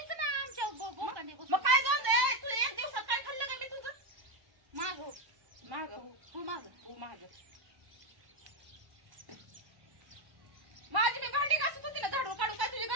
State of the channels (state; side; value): late; left; 1.0 ms